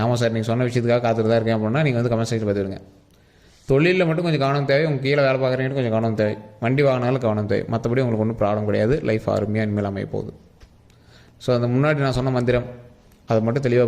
ஆமாம் சார் நீங்கள் சொன்ன விஷயத்துக்காக காத்துட்டு தான் இருக்கேன் அப்படின்னா நீங்கள் வந்து கமெண்ட் செக்ஷன் பார்த்துருங்க. தொழிலில் மட்டும் கொஞ்சம் கவனம் தேவை, உங்கள் கீழே வேலை பார்க்குறீங்கன்னு கொஞ்சம் கவனம் தேவை, வண்டி வாங்கினாலும் கவனம் தேவை, மற்றபடி உங்களுக்கு ஒன்றும் ப்ராப்ளம் கிடையாது. லைஃப் அருமையாக இனிமேல் அமைய போகுது. ஸோ அந்த முன்னாடி நான் சொன்ன மந்திரம் அதை மட்டும்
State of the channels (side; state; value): both; identical; correlation 1.00